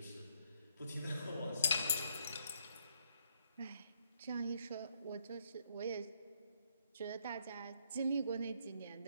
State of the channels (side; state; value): both; inverted; correlation -0.72